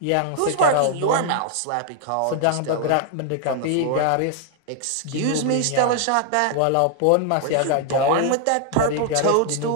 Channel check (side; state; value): both; different; correlation 0.00